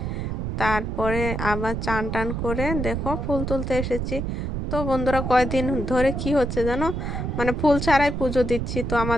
তারপরে আবার চান টান করে দেখো ফুল তুলতে এসেছি। তো বন্ধুরা কয়দিন ধরে কি হচ্ছে জানো, মানে ফুল ছাড়াই পুজো দিচ্ছি। তো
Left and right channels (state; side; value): noise; right; rumble, 3 dB below the sound